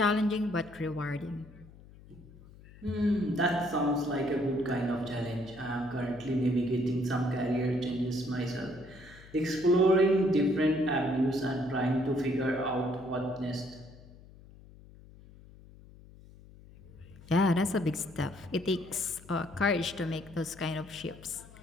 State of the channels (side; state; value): left; noise; hum, 21 dB below the sound